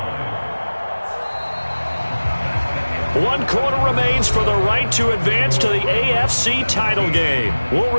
1 quarter remains for the right to advance to the AFC title game. We'll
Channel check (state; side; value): inverted; both; correlation -1.00